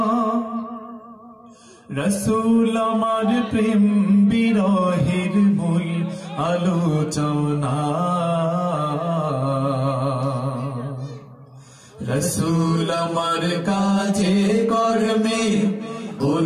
রসুল আমার প্রেম বিরহের মূল আলোচনা, রসুল আমার কাজে কর্মে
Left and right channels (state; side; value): identical; both; correlation 1.00